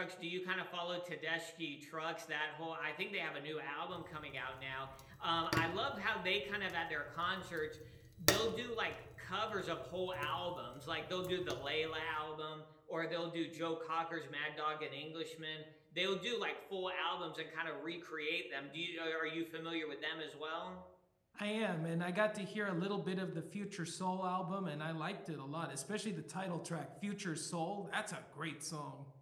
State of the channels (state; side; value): identical; both; correlation 1.00